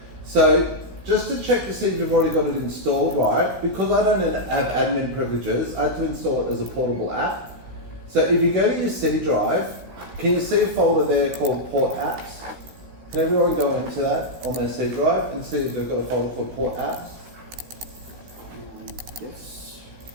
So just to check to see if you've already got it installed right, because I don't have admin privileges, I have to install it as a portable app. So if you go to your C drive, can you see a folder there called Port Apps? Can everyone go into that on their C drive and see if they've got a folder called Port Apps? Yes.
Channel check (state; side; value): late; left; 15 ms